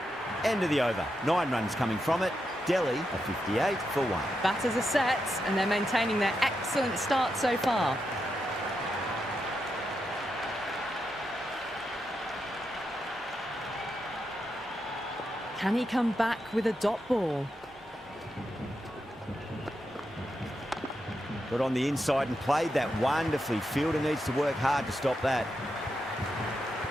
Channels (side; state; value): both; normal; correlation 0.85